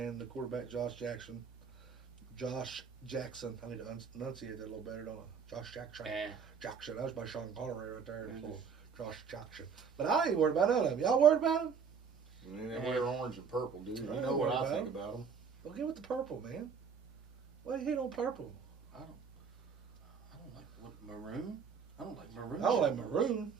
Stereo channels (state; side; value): quieter; left; 6.2 dB